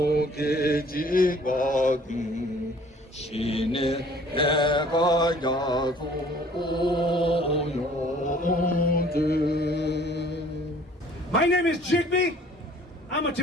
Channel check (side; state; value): both; normal; correlation 0.54